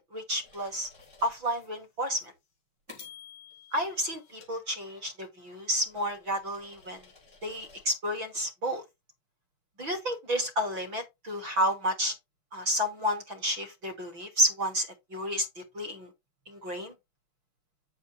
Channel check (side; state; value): left; late; 6.0 ms